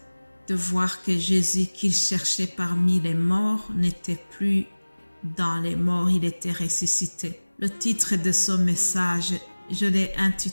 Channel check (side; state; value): both; inverted; correlation -1.00